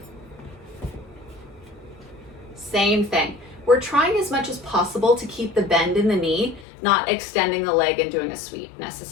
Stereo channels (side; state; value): right; drops out; at 6.7 s